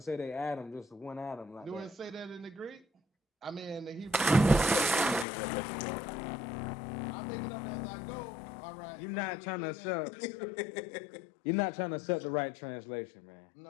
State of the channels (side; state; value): right; drops out; at 5.2 s